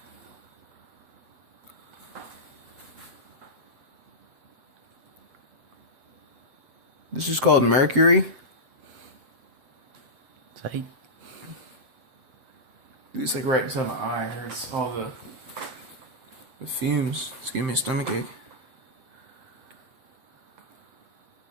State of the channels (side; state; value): left; late; 7.6 ms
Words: This is called mercury. Tight. It's like right inside my eye. It hurts all the fumes. It's giving me a stomach ache.